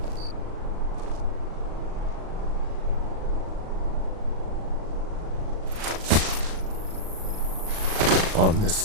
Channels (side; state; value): left; late; 37 ms